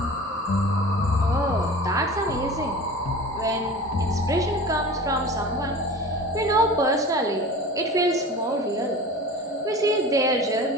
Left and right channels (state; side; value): normal; both; correlation 0.37